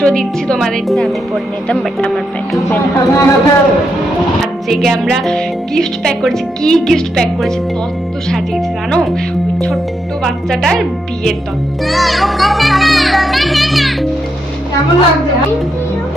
দিচ্ছি তোমাদেরকে, আমি পড়ে নিতাম বাট আমার প্যাক আজকে আমরা গিফট প্যাক করেছি। কি গিফট প্যাক করেছি? তত্ত্ব সাজিয়েছি জানো, ওই ছোট্ট বাচ্চাটার বিয়ের তত্ত্ব। কেমন লাগছে?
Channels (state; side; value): normal; both; correlation 0.82